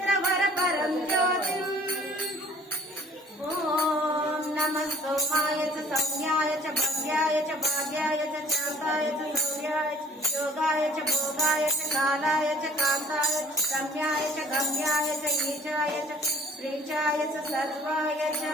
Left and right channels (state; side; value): normal; both; correlation 0.51